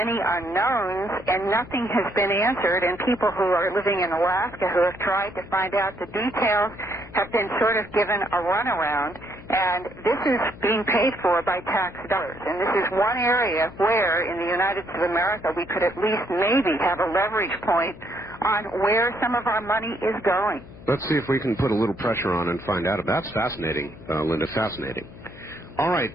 unknowns and nothing has been answered, and people who are living in Alaska who have tried to find out the details have been sort of given a runaround, and this is being paid for by tax dollars. And this is one area where in the United States of America we could at least maybe have a leverage point on where some of our money is going. Let's see if we can put a little pressure on and find out. That's fascinating, Linda, fascinating. All right,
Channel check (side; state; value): left; noise; hum, 18 dB below the sound